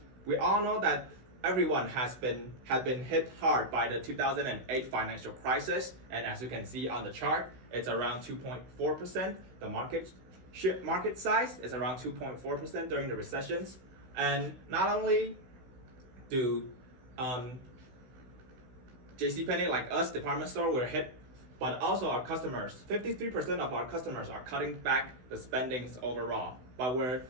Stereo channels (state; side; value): late; left; 16 ms